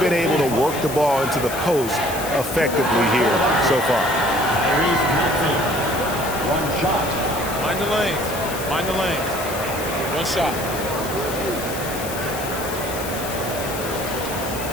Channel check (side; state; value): left; noise; hiss, 10 dB below the sound